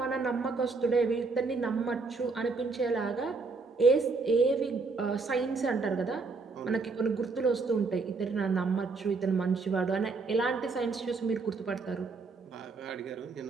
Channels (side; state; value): left; quieter; 4.2 dB